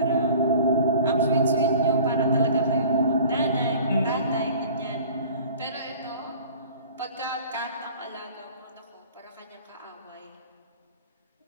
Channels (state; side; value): inverted; both; correlation -0.45